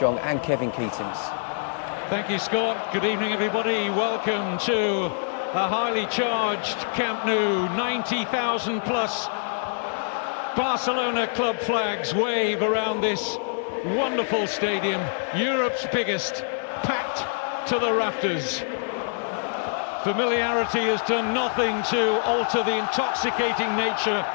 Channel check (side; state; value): right; silent; digital silence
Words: and Kevin Keatings. Thank you, Scott. Good evening, everybody. Welcome to a highly charged Camp Nou. 90,000 plus Barcelona club flags wave around this wonderful stadium. Europe's biggest, packed to the rafters. Familiarity has done nothing to alter the intoxicating nature